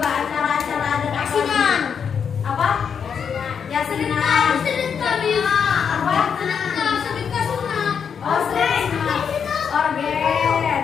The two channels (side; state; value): right; quieter; 7.0 dB